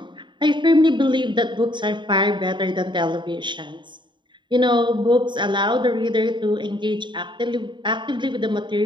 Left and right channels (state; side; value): late; left; 0.23 ms